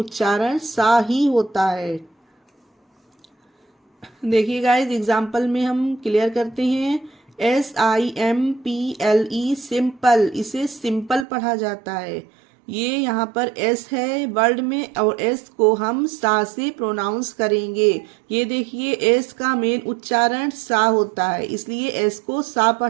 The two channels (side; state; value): left; drops out; at 11.2 s